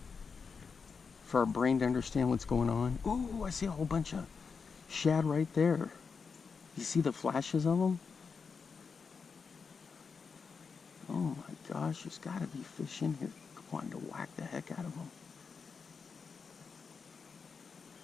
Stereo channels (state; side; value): quieter; right; 5.4 dB